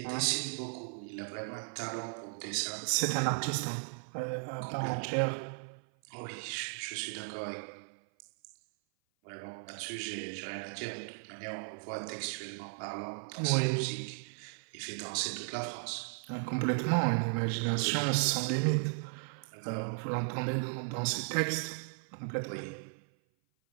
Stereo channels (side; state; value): left; silent; 54 dB below the other